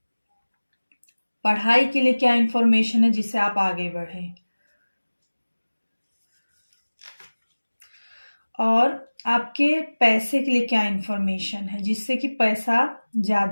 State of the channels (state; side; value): inverted; both; correlation -1.00